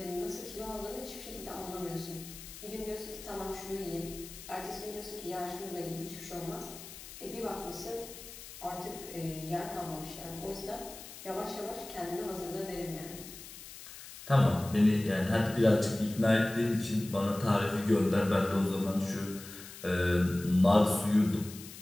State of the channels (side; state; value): left; noise; hiss, 14 dB below the sound